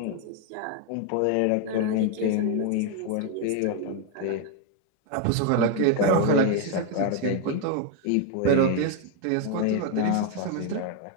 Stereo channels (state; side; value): different; both; correlation 0.01